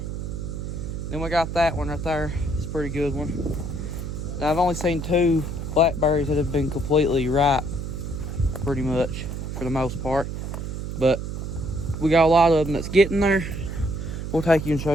Then we got that one right there. It's a pretty good one. Now, I've only seen 2 blackberries that have been completely ripe, pretty much, for the most part. But we got a lot of them that's getting there. We'll take you and show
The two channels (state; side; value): noise; right; hum, 5 dB below the sound